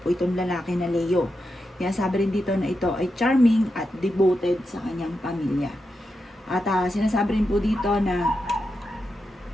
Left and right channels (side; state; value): both; normal; correlation 0.87